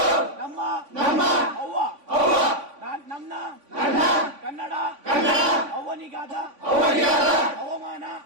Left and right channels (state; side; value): late; left; 3.5 ms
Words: ನಮ್ಮ ಅವ್ವ. ನನ್ನ ಕನ್ನಡ ಅವ್ವನಿಗಾದ ಅವಮಾನ